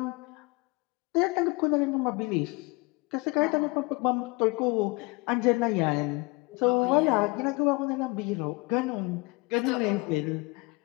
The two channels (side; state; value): right; quieter; 26.5 dB